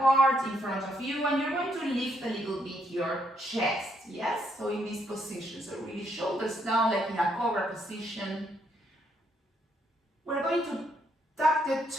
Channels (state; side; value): normal; both; correlation 0.74